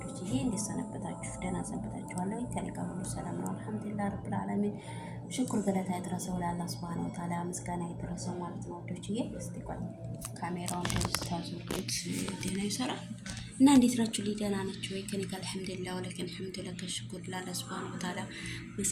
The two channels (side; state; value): both; identical; correlation 1.00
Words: ይሄ እንዴት ሰነበታችሁ? ደህና ሰነበታችኋል ወይ? ከኔ ጋር ሁሉ ሰላም ነው አልሐምዱሊላህ ረብል ዓለሚን። ሽኩር ገለታ ይድረሰው ለአላህ ሱብሃነሁ ወተዓላ፣ ምስጋና ይድረሰው ማለት ነው ወዶችዬ። እስቲ ቆይ ካሜራውን ታዙት ደህና ይሰራል እና እንዴት ናችሁ? ደህና ናችሁ ወይ? ከኔ ጋር አልሐምዱሊላህ ወለከን ሐምዱሊላህ ከሽኩር ለአላህ ሱብሃነሁ ወተዓላ